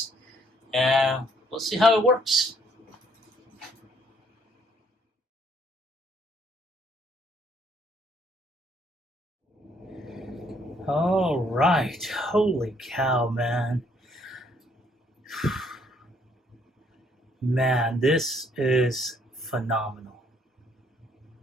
and we'll see how it works. All right, holy cow, man. Man, this is phenomenal.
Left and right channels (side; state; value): both; normal; correlation 0.66